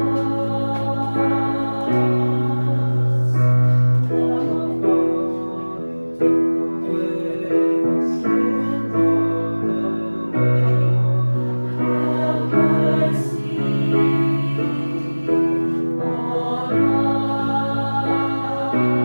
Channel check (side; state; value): both; inverted; correlation -1.00